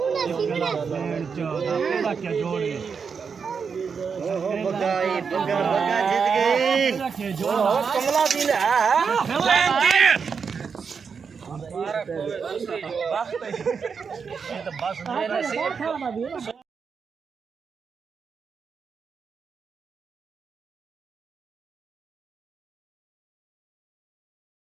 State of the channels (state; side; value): quieter; left; 5.9 dB